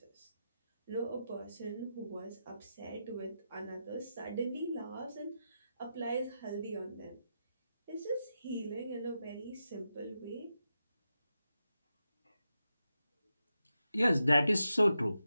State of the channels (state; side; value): inverted; both; correlation -0.88